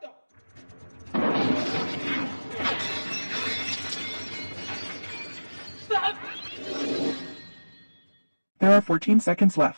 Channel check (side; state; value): both; inverted; correlation -1.00